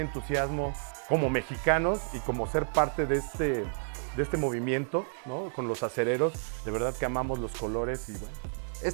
como mexicanos y como ser parte de este movimiento, ¿no? Con los acereros, de verdad que amamos los colores y bueno.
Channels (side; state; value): left; silent; 57 dB below the other